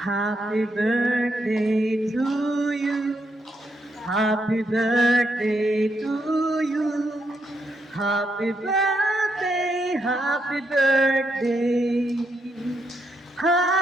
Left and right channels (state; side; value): normal; both; correlation 0.79